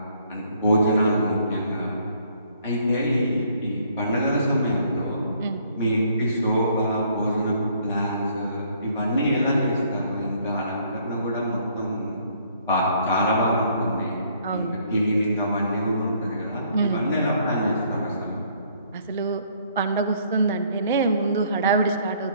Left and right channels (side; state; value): both; inverted; correlation -0.64